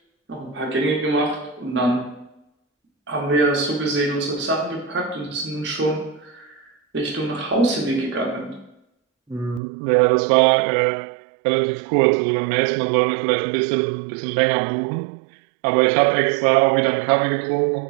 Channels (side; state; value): left; drops out; at 9.6 s